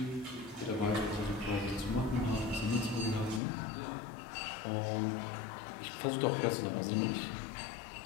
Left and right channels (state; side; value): drops out; right; at 3.4 s